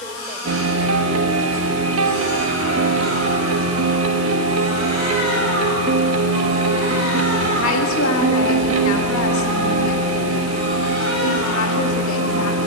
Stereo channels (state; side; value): noise; left; hiss, 15 dB below the sound